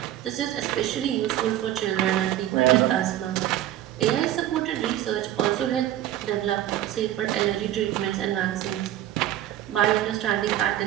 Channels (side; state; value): left; quieter; 12.9 dB